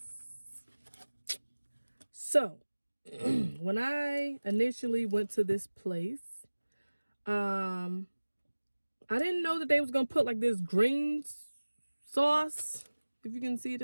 So when I initially went to this place, I didn't know that they was gonna put like this green sauce, if you can see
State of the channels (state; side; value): inverted; both; correlation -1.00